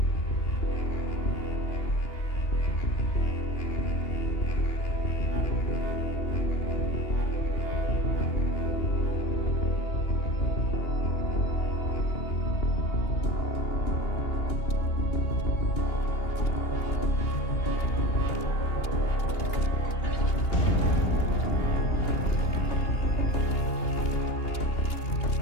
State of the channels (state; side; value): late; right; 2.8 ms